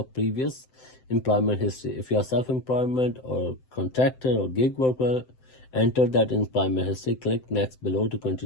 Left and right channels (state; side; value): late; right; 7.8 ms